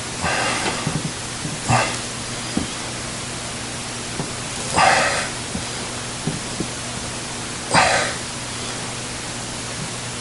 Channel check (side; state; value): both; identical; correlation 1.00